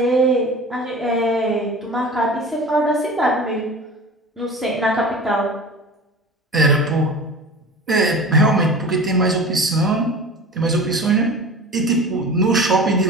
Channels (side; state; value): both; normal; correlation 0.36